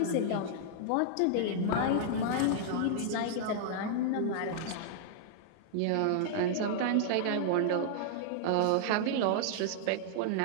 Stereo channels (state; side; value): different; both; correlation -0.01